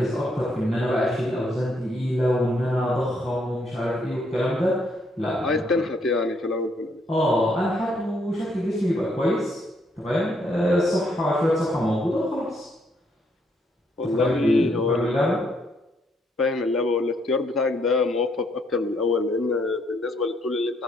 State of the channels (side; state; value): both; normal; correlation 0.72